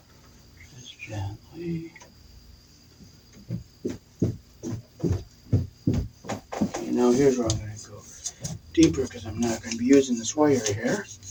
Just gently. Okay, now here's where I'm going to go deeper because I'm not going to be using this wire here.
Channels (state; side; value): identical; both; correlation 1.00